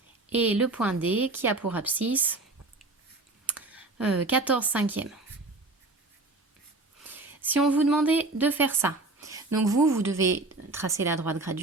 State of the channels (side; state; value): left; quieter; 3.1 dB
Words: et le point D qui a pour abscisse 14 cinquièmes. Si on vous demandait de faire ça, donc vous devez tracer la droite